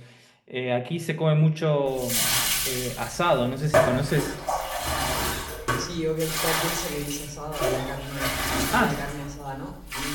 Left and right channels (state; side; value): identical; both; correlation 1.00